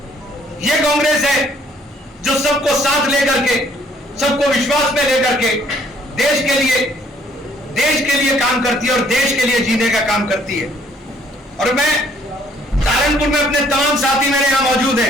यह कांग्रेस है जो सबको साथ लेकर के, सबको विश्वास में लेकर के देश के लिए काम करती है और देश के लिए जीने का काम करती है। और मैं सहारनपुर में अपने तमाम साथी मेरे यहां मौजूद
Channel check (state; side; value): normal; both; correlation 0.62